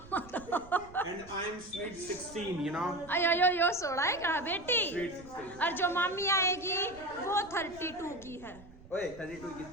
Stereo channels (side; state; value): right; noise; rumble, 20 dB below the sound